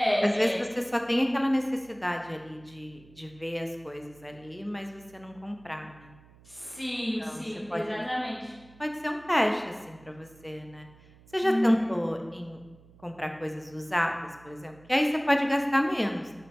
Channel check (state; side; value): noise; right; hum, 25 dB below the sound